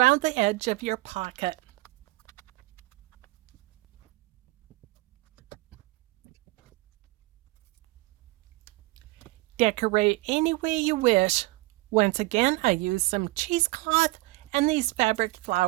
the edge of your pocket. Decorate any way you wish. Once again, I used some cheesecloth and these fabric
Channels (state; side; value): quieter; left; 21.6 dB